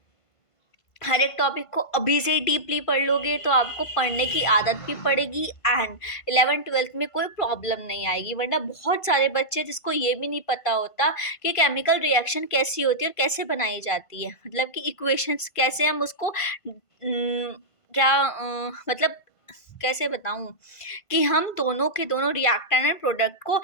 हर एक टॉपिक को अभी से ही डीपली पढ़ लोगे तो आपको पढ़ने की आदत भी पड़ेगी एंड 11th-12th में कोई प्रॉब्लम नहीं आएगी। वरना बहुत सारे बच्चे जिसको ये भी नहीं पता होता कि केमिकल रिएक्शन कैसी होती है और कैसे बनाई जाती है, मतलब कि इक्वेशंस कैसे हम उसको मतलब कैसे बताऊं कि हम दोनों के दोनों रिएक्टेंट एंड प्रोडक्ट को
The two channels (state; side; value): late; right; 1.5 ms